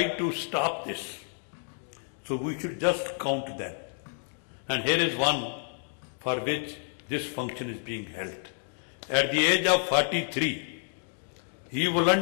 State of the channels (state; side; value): silent; right; 58 dB below the other